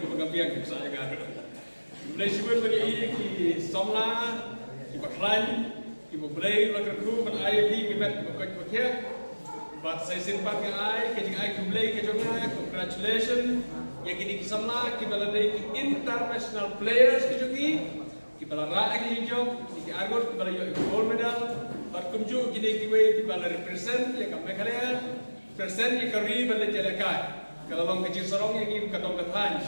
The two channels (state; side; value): inverted; both; correlation -1.00